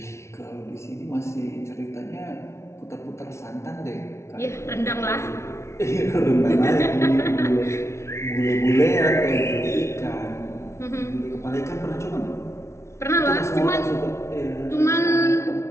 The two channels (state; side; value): late; right; 0.13 ms